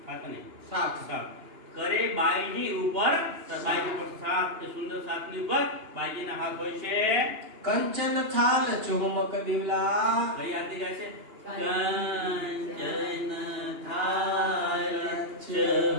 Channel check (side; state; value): left; late; 2.9 ms